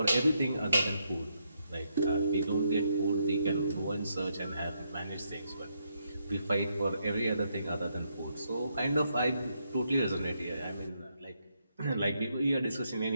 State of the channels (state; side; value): inverted; both; correlation -0.78